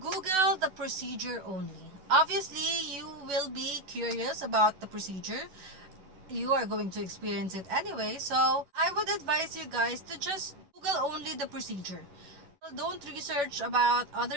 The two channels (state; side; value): late; left; 11 ms